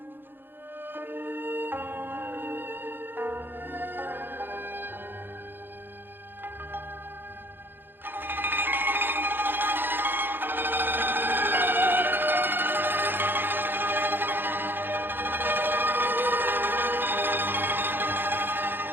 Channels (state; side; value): late; left; 0.098 ms